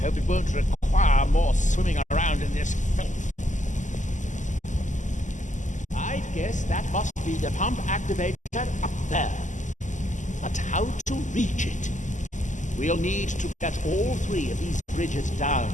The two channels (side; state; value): right; late; 0.36 ms